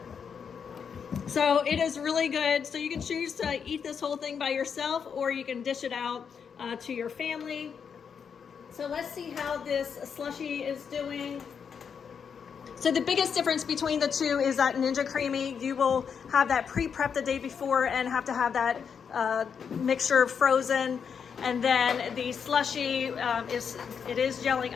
So it is really good. So you can choose to eat this whole thing by yourself, or you can dish it out to your family. So let's see how this slushie is doing. So the biggest difference between the two is that Ninja CREAMi, you will have that pre-prep the day before and have to have that mixture frozen. And then the slushie it is gelling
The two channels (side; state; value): right; quieter; 6.8 dB